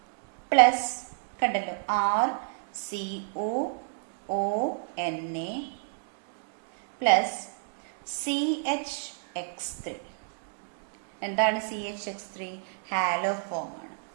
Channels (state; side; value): silent; left; digital silence